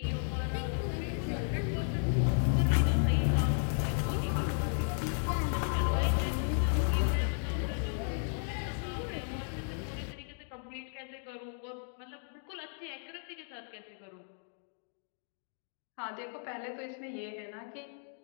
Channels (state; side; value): silent; right; 55 dB below the other